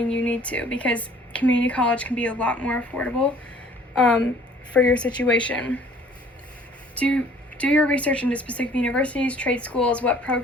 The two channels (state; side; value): normal; both; correlation 0.55